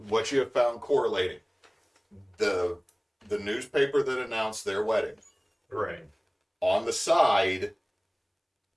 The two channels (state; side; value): identical; both; correlation 1.00